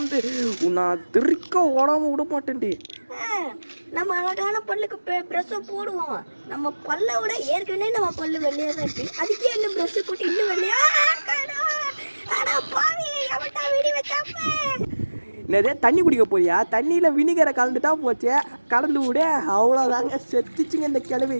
நான் திருக்க ஓடாமல் விட மாட்டேன்டி. நம்ம அழகான பல்லுக்கு ப்ரெஷ்ஷை போடுவோம். நம்ம பல்லை விட ஏற்கனவே நம்ம பல்லு வெள்ளையாக தான் இருக்கு. அதுக்கே இன்னும் ப்ரெஷ்ஷு போட்டு இன்னும் வெள்ளையா? பாவி, எவன்டா வெடி வச்சாப்ப? என்னதே, தண்ணி குடிக்க போறியா? தண்ணியில் வினிகரை கலந்துட்டா போச்சே. கலந்து விட, அவ்வளோதாங்க, செத்துச்சுங்க இந்த கிழவி.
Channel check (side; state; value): both; inverted; correlation -1.00